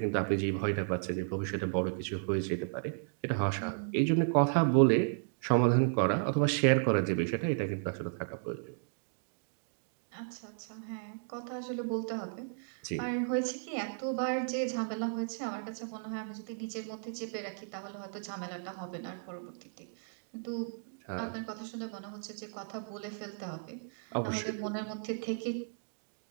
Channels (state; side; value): silent; left; digital silence